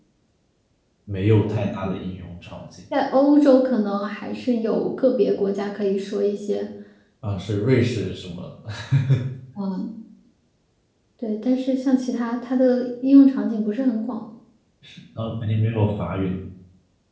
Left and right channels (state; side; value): identical; both; correlation 1.00